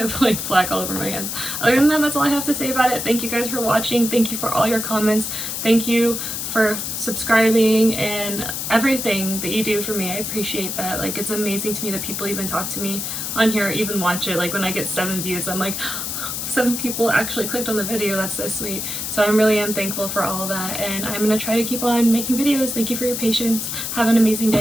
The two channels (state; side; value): noise; left; hiss, 4 dB below the sound